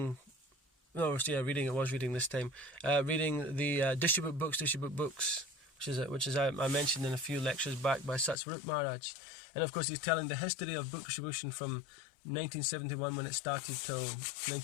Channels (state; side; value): drops out; right; at 8.3 s